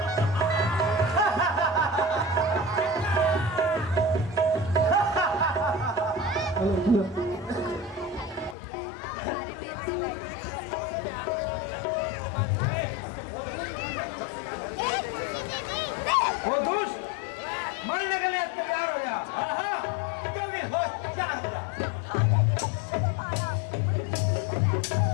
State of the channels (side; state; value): right; drops out; at 8.6 s